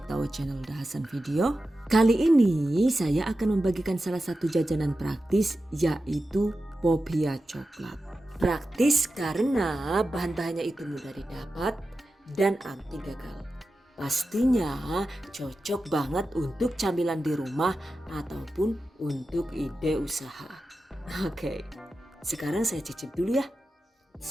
to our channel Dahasan Video. Kali ini saya akan membagikan salah satu jajanan praktis, yaitu Popia coklat. Praktis karena bahan-bahannya itu mudah didapat dan anti gagal. Pastinya cocok banget untuk camilan di rumah ataupun untuk ide usaha. Oke, sekarang saya cicip dulu ya.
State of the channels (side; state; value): both; normal; correlation 0.92